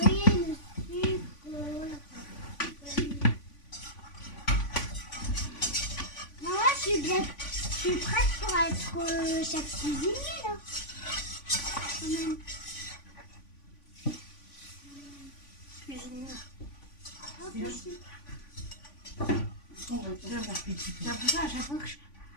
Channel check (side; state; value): right; late; 3.5 ms